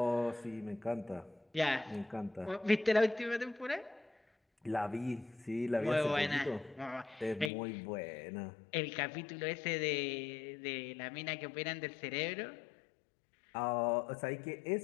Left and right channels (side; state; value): right; drops out; at 7.5 s